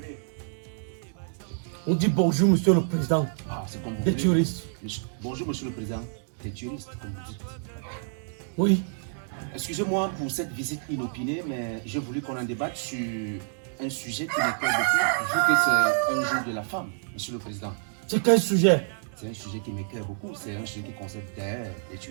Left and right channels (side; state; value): left; silent; digital silence